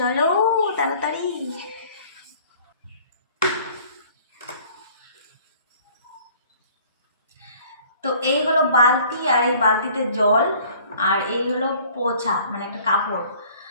তাড়াতাড়ি। তো এই হলো বালতি, আর এই বালতিতে জল, আর এই হলো পোছা মানে একটা কাপড়।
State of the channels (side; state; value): both; inverted; correlation -0.53